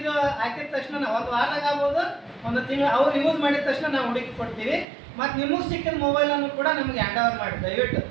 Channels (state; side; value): drops out; left; at 4.9 s